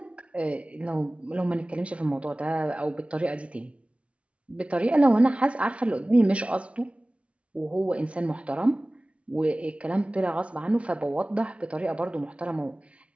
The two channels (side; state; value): left; late; 0.062 ms